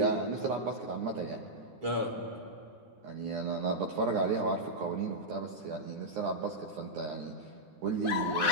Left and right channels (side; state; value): left; late; 9.8 ms